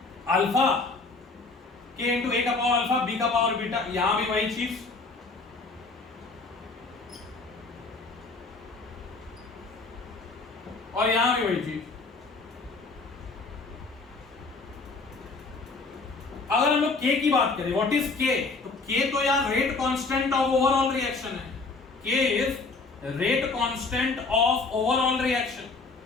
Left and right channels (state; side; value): quieter; right; 3.9 dB